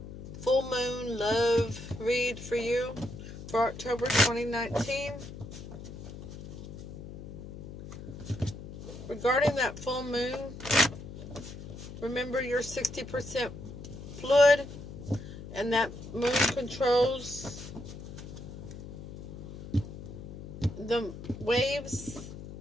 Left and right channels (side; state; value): left; noise; hum, 11 dB below the sound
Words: full moon love read for you for October 2019. Regarding that full moon, remember you're 60% fluid and that moon controls the waves,